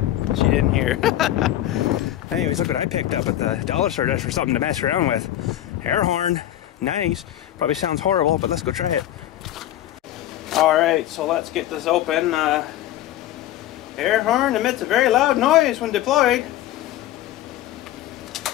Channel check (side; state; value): right; quieter; 13.2 dB